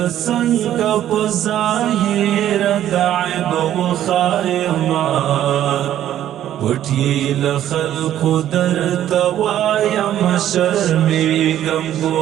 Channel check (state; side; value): quieter; left; 11.7 dB